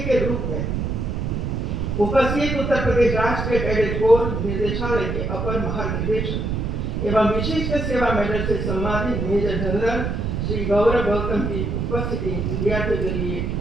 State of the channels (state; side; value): noise; right; rumble, 1 dB below the sound